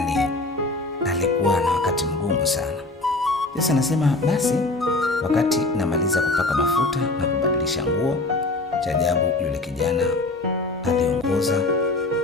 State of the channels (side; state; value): right; quieter; 3.0 dB